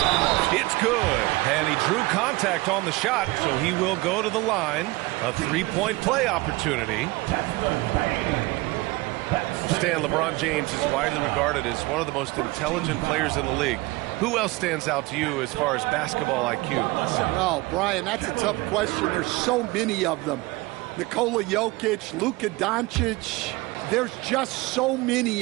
It's good. And he drew contact on the shot, so he will go to the line. A three-point play opportunity. Stan, LeBron James is widely regarded as one of the most intelligent players in the league. Who else stands out to you as far as basketball IQ? Well, Brian, that's a tough question. There's so many of them. Nikola Jokic, Luka Doncic. There's just so many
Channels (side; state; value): left; quieter; 21.9 dB